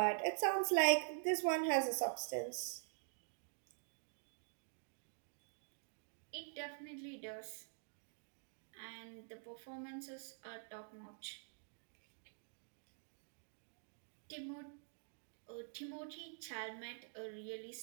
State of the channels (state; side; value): silent; left; digital silence